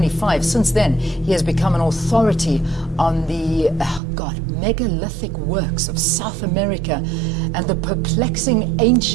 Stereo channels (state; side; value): drops out; left; at 4.0 s